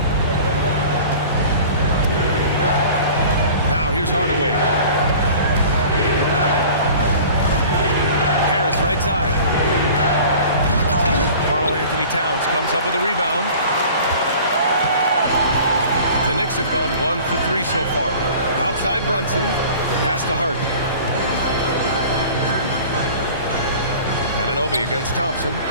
Now here's Hardaway. Harris right side. Karl-Anthony Towns comes up with a rebound. The Knicks have gone 1 for 3 so far. Outside Brunson. Pass to Hart. Anunoby against Thompson.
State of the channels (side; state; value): both; inverted; correlation -0.43